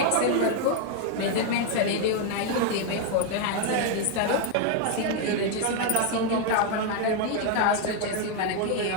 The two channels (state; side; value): different; both; correlation 0.01